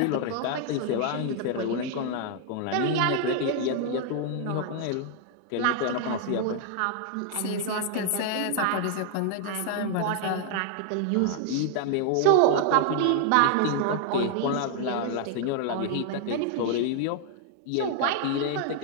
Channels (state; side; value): different; both; correlation 0.00